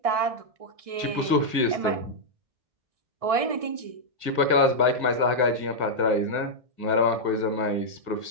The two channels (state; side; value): late; left; 1.6 ms